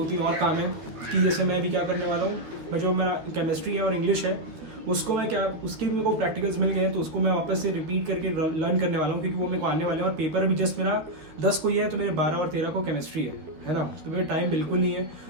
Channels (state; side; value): late; left; 13 ms